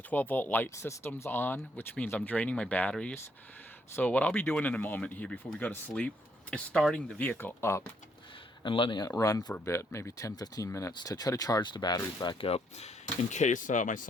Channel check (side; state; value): both; normal; correlation 0.72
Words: light systems on, which means I'm draining my batteries. So what I'll be doing in a moment here before we go to sleep is starting the vehicle up and letting it run for a bit, maybe 10-15 minutes, to try to charge the batteries back up in case my